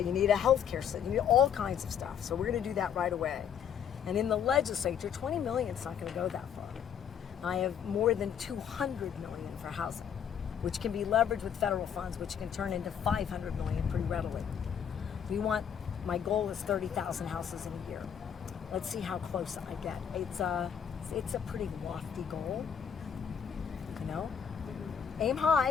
need a healthcare system. You need all kinds of stuff. So we're going to do that right away. And in the legislature, 20 million is not going to go that far. I have more than 200 million for housing, which can be leveraged with federal funds, which can turn into 500 million pretty readily. My goal is 30,000 houses in a year. Let's see how close I get. It's a pretty lofty goal, you know? Aim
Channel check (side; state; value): right; quieter; 8.2 dB